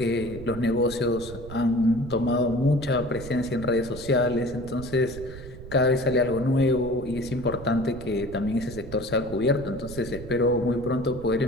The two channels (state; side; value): noise; right; rumble, 13 dB below the sound